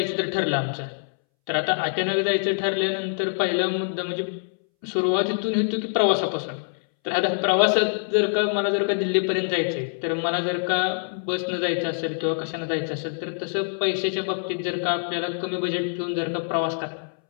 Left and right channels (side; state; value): right; silent; 62 dB below the other